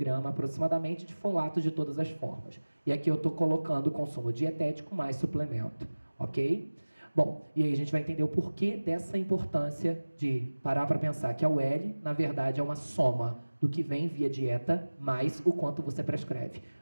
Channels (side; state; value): both; inverted; correlation -1.00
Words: aproximadamente de folato de todas as formas. E aqui eu estou colocando o consumo dietético mais suplemento. Ok? Bom, e aí a gente vai entender o porquê dessa importância de parar para pensar que a UL, na verdade, é uma soma do que vem via dieta mais o quanto você prescreve,